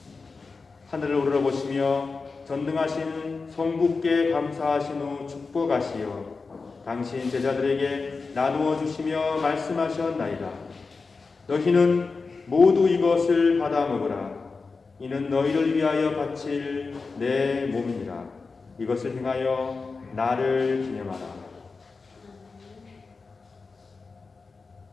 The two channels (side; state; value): right; quieter; 4.3 dB